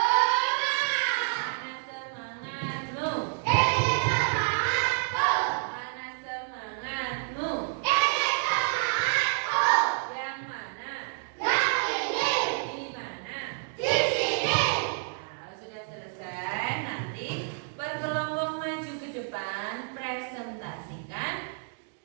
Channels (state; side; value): silent; left; 59 dB below the other